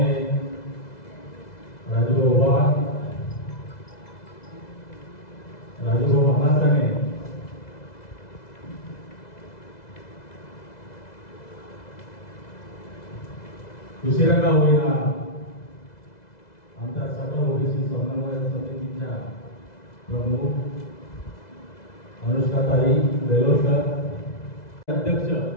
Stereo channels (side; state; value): right; late; 2.0 ms